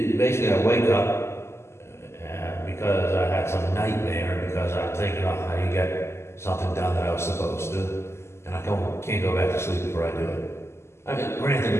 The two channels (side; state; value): right; late; 0.13 ms